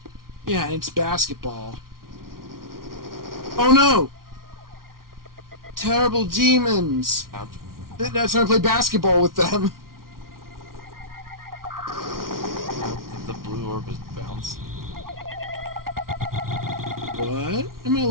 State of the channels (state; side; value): late; left; 0.92 ms